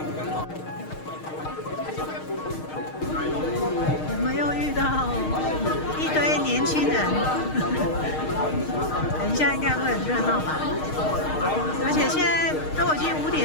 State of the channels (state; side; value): late; right; 6.5 ms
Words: 我们又遇到一堆年轻人，等一下应该会很热闹吧？而且现在都已经5